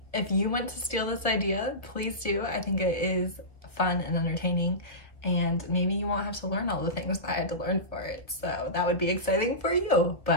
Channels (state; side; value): late; right; 1.4 ms